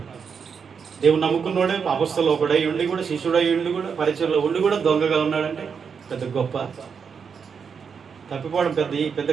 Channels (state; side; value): quieter; left; 6.3 dB